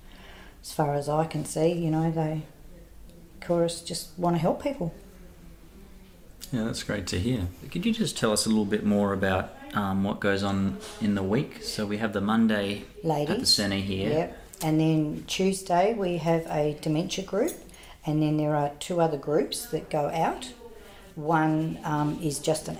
As far as I can see, you know, Chorus just want to help people. Yeah, that's great to hear. Could you just tell us a little bit more about what goes on in the week? So we have the Monday Ladies. at the centre here. Yep. And then Tuesday we have a dementia group, and then there are 2 other groups that go out. One is just an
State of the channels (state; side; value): identical; both; correlation 1.00